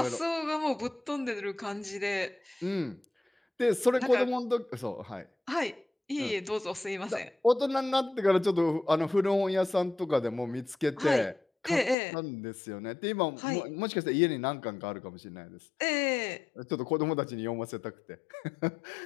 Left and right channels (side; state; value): right; drops out; at 12.0 s